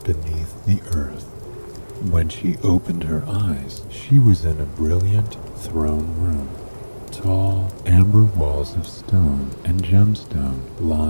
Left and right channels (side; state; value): both; inverted; correlation -1.00